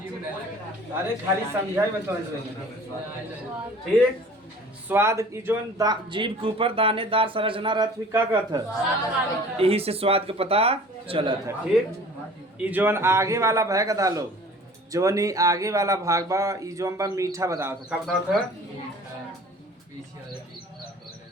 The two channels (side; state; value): both; normal; correlation 0.47